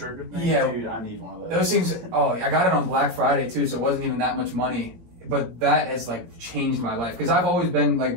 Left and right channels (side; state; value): left; late; 17 ms